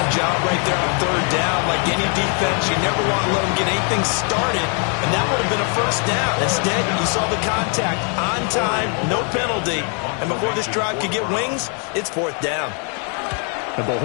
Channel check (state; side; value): quieter; right; 39.8 dB